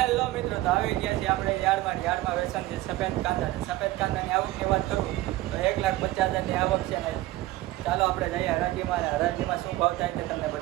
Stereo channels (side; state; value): left; quieter; 16.9 dB